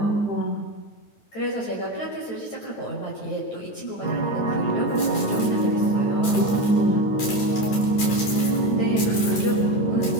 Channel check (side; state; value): right; late; 9.4 ms